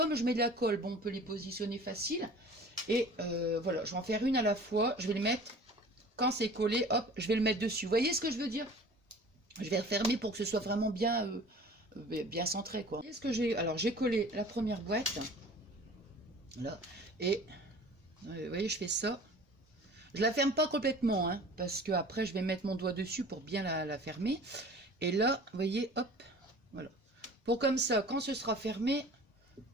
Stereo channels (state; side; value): normal; both; correlation 0.44